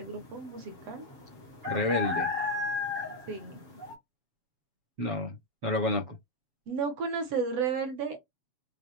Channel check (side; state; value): left; late; 7.2 ms